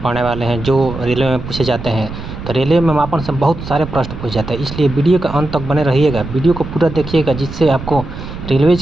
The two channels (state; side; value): noise; right; rumble, 10 dB below the sound